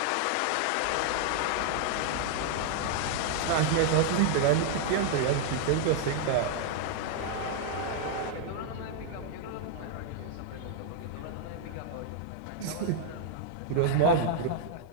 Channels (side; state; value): both; different; correlation -0.01